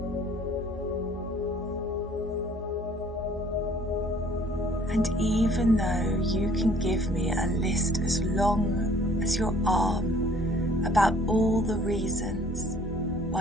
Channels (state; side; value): normal; both; correlation 0.56